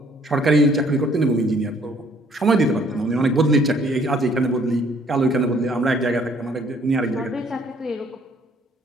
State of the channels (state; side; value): normal; both; correlation 0.62